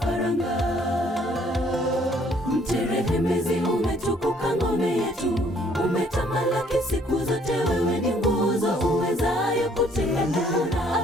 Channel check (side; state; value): both; normal; correlation 0.63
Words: Mterehemezi umetukuka ngome yetu, umetamalaki siku zote, wewe ni nguzo uwezayo kutegemea na